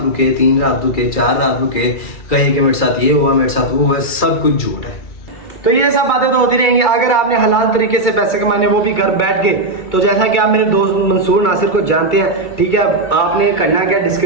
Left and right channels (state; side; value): late; right; 2.3 ms